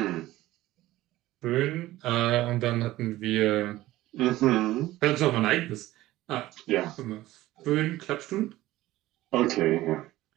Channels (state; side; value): quieter; left; 16.4 dB